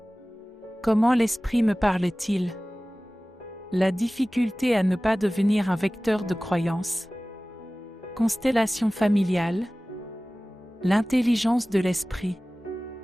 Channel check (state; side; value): normal; both; correlation 0.98